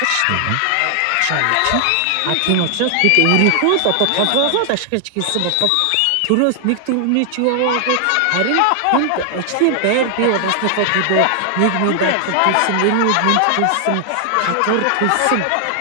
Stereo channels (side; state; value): both; different; correlation 0.00